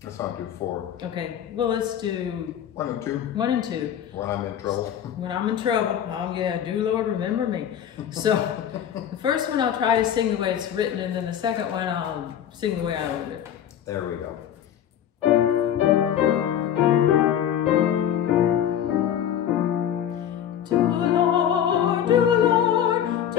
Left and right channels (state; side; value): quieter; right; 9.9 dB